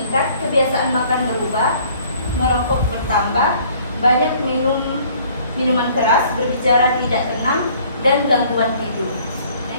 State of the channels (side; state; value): both; inverted; correlation -0.57